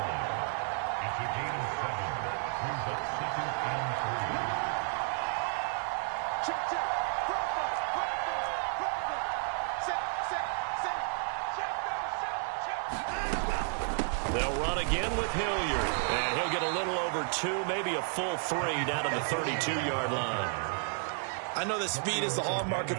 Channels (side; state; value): left; silent; 56 dB below the other